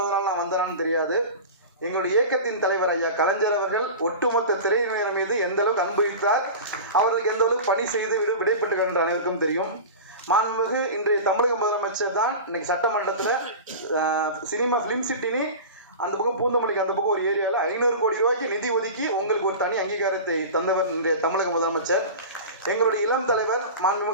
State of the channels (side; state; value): both; inverted; correlation -0.31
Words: நான் வந்தேனான்னு தெரியாது. எங்களுடைய இயக்கத்தின் தலைவர் ஐயா கலைஞர் அவர்கள் ஒட்டுமொத்த திரையினர் மீது எந்த அளவுக்கு அன்பு வைத்தார், அவர்களுக்கு எந்த அளவுக்கு பணி செய்து விடைபெற்று என்ற அனைவருக்கும் தெரியும். மாண்புமிகு இன்றைய தமிழக முதலமைச்சர் தான் இன்னைக்கு சட்டமன்றத்தில் சினிமா ஃபிலிம் சிட்டினி அந்த பக்கம் பூந்தமல்லிக்கு அந்த பக்கம் ஒரு ஏரியாவில் 500 கோடி ரூபாய்க்கு நிதி ஒதுக்கி உங்களுக்கு ஒரு தனி அங்கீகாரத்தை தந்தவர் இன்றைய தமிழக முதலமைச்சர். எங்களுடைய இளம் தலைவர்